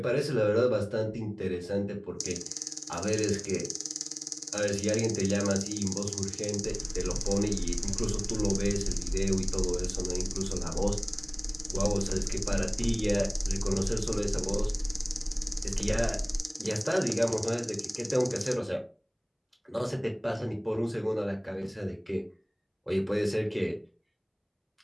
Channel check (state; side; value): identical; both; correlation 1.00